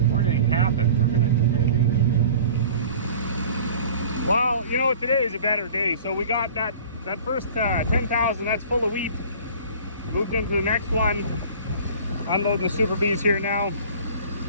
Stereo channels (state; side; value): inverted; both; correlation -0.45